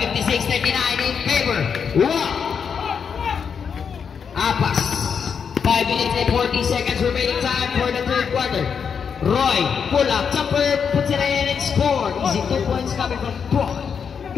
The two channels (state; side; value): quieter; right; 6.7 dB